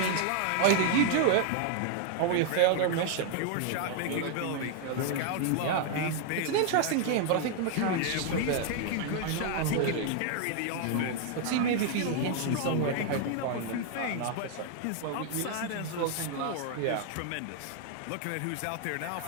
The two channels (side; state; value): both; different; correlation 0.00